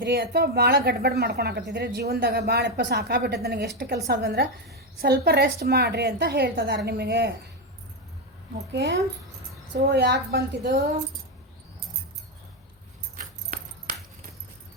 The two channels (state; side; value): normal; both; correlation 0.08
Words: ಅಥವಾ ಭಾಳ ಗಡ್ಬಡ್ ಮಾಡ್ಕೊಳಕತ್ತಿದ್ರಿ ಜೀವನದಾಗ, ಭಾಳಪ್ಪ ಸಾಕಾಗ್ಬಿಟ್ಟೈತೆ ನನಗೆ, ಎಷ್ಟು ಕೆಲಸ ಅದಂದ್ರೆ ಸ್ವಲ್ಪ ರೆಸ್ಟ್ ಮಾಡಿರಿ ಅಂತ ಹೇಳ್ತಿದ್ದಾರೆ ನಿಮಗೆ. ಓಕೆ, ಸೊ ಯಾಕೆ ಬಂತಿದು,